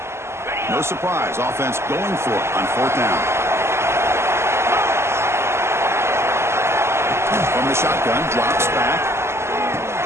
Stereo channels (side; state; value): left; late; 0.13 ms